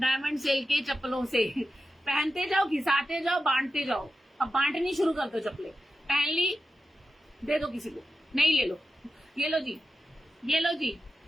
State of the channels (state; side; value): normal; both; correlation 0.91